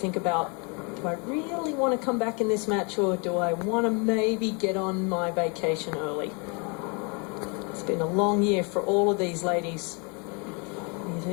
about, do I really want to come back in this match, or do I want to maybe get on my vacation early? It's been a long year for all of these ladies. You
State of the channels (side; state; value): right; quieter; 33.1 dB